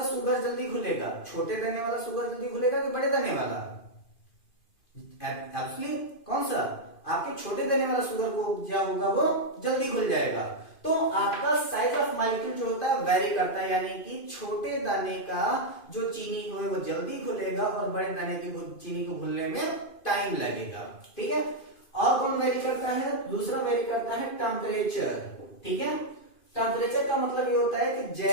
शुगर जल्दी घुलेगा, छोटे दाने वाला शुगर जल्दी घुलेगा कि बड़े दाने वाला, एक्चुअली कौन सा, आपके छोटे दाने वाला शुगर को क्या होगा वो जल्दी घुल जाएगा। तो आपका साइज ऑफ मॉलिक्यूल जो होता है वेरी करता है, यानी कि छोटे दाने का जो चीनी है वो जल्दी घुलेगा और बड़े दाने की चीनी को घुलने में टाइम लगेगा, ठीक है। और कौन वेरी करता है? दूसरा वेरी करता है टेम्परेचर। ठीक है, टेम्परेचर का मतलब ये होता है कि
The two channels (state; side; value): late; right; 2.5 ms